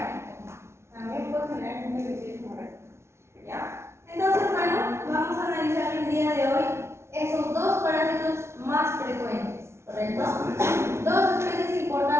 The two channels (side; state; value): left; late; 0.13 ms